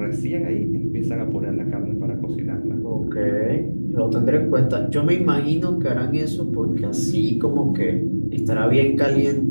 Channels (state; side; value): inverted; both; correlation -1.00